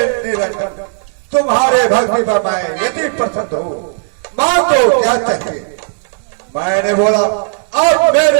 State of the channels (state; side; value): silent; left; digital silence